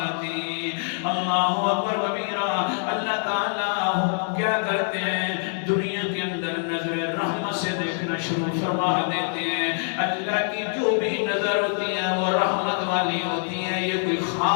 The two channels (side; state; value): right; silent; 62 dB below the other